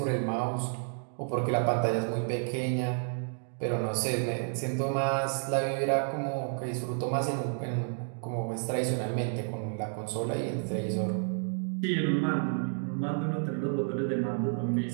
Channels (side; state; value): left; silent; 57 dB below the other